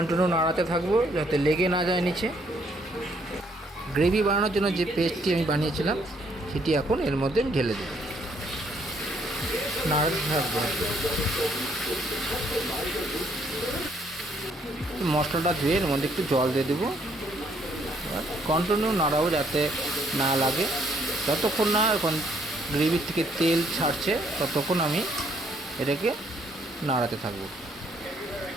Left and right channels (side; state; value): both; normal; correlation 0.68